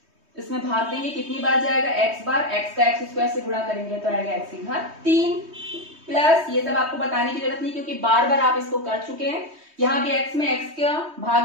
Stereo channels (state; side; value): late; left; 3.2 ms